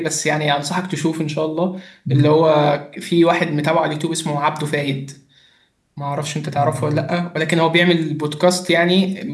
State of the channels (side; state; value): both; identical; correlation 1.00